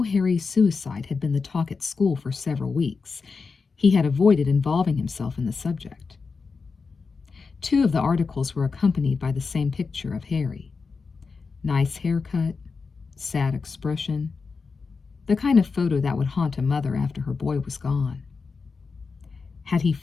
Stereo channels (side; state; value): right; quieter; 4.8 dB